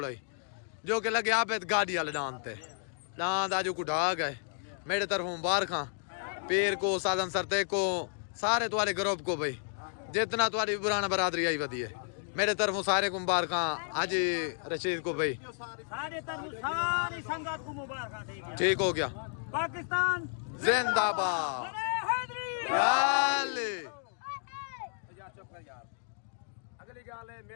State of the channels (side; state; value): right; silent; digital silence